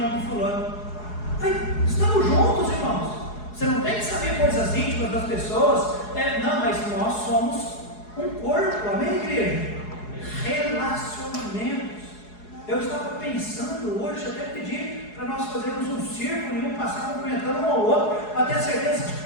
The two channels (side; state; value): right; late; 4.8 ms